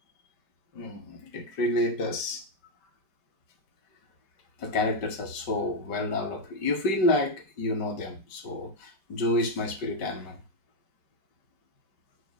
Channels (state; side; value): late; right; 5.1 ms